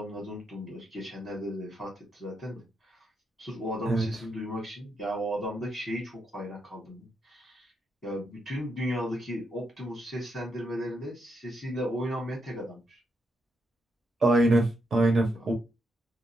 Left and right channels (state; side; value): normal; both; correlation 0.81